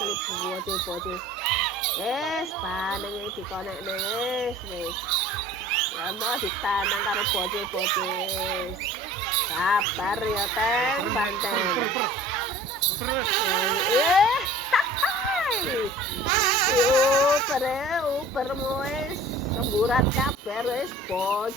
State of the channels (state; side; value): normal; both; correlation 0.45